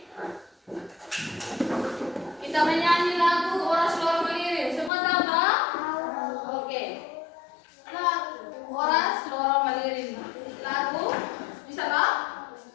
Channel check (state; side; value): drops out; right; at 4.9 s